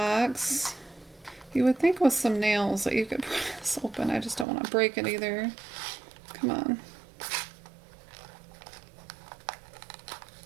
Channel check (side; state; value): left; drops out; at 4.5 s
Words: You would think with some nails that you could pry this open. I just don't want to break it either. Come on.